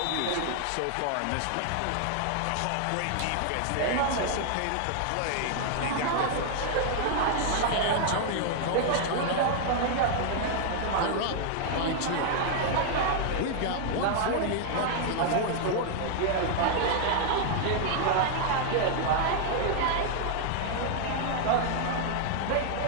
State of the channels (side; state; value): both; different; correlation 0.00